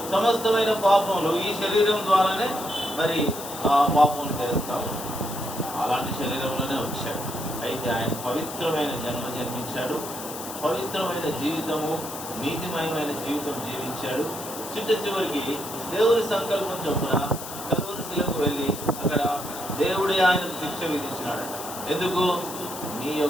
సమస్తమైన పాపములు ఈ శరీరం ద్వారానే మరి ఆ పాపములు చేస్తాడు. అలాంటి శరీరంలోనే వచ్చాడు. అయితే ఆయన పవిత్రమైన జన్మించాడు, పవిత్రమైన జీవితము, నీతిమయమైన జీవితం జీవించాడు. చివరికి దేవుని సంకల్పం చొప్పున కలువరి శిలకు వెళ్ళి అక్కడ దేవుడే ఆయనకు శిక్ష విధించినాడట. ఎందుకు? నీ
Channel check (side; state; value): left; noise; hiss, 10 dB below the sound